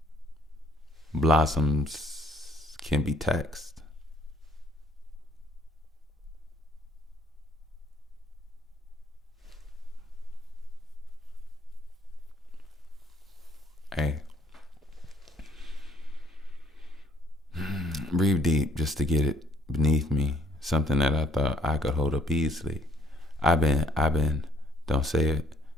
Blossoms can be taxed. Hey, breathe deep just to get it beneath me. Something that I thought I could hold up easily. I've been, don't say it.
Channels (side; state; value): both; normal; correlation 0.63